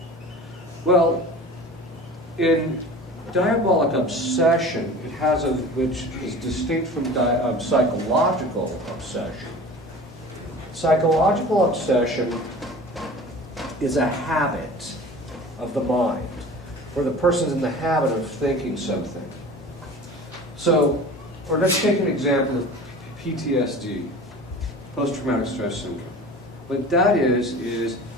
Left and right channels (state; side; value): normal; both; correlation 0.39